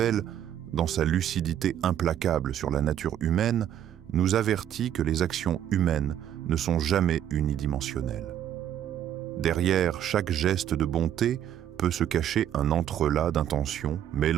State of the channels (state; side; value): quieter; left; 10.4 dB